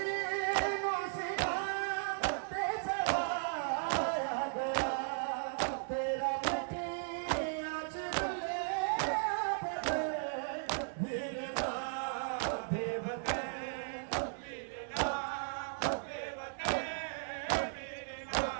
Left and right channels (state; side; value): silent; left; digital silence